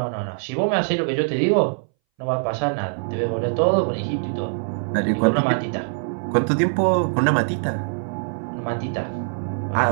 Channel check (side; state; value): left; silent; 61 dB below the other